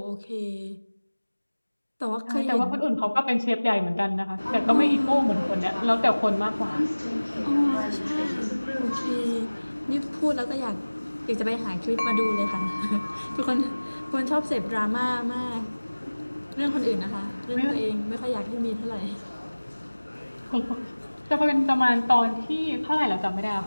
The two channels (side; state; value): both; inverted; correlation -1.00